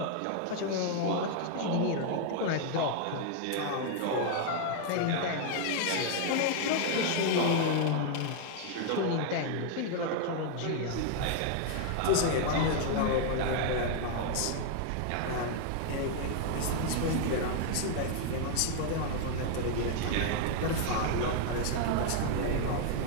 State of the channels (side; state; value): both; different; correlation 0.00